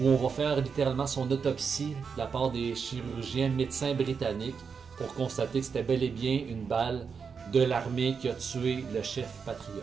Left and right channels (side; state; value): left; quieter; 5.9 dB